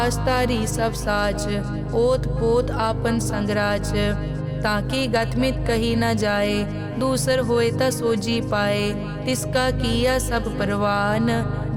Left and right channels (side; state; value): both; identical; correlation 1.00